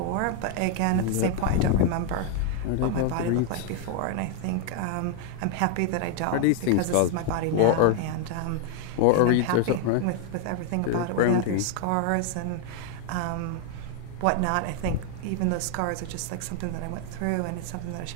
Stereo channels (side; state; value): both; different; correlation 0.00